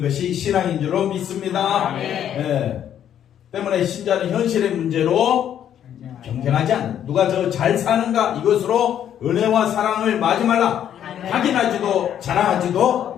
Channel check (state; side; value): quieter; right; 10.0 dB